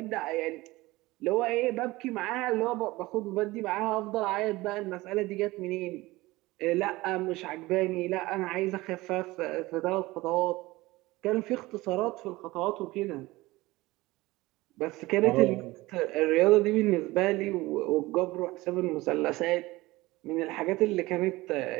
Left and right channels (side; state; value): left; quieter; 19.9 dB